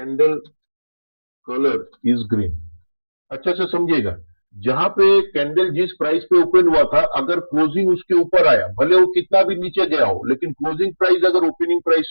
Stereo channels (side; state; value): both; inverted; correlation -1.00